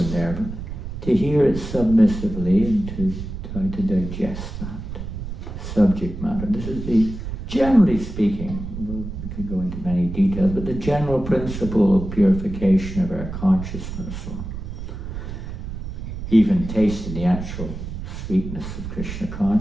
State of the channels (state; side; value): noise; right; rumble, 8 dB below the sound